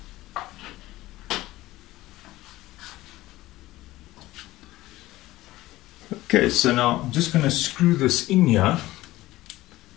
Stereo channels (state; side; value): quieter; right; 17.1 dB